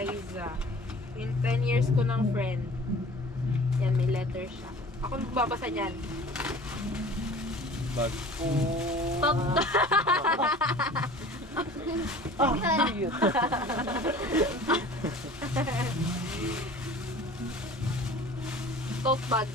In 10 years ko ng friend. Yan, may letter siya. Ako magbabasa niyan. Bag. Oh. Top. Oh, cute. Tote bag.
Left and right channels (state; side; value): normal; both; correlation 0.44